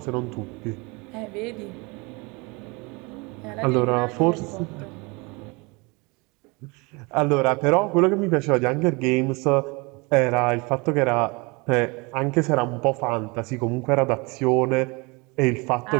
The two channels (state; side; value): quieter; left; 27.6 dB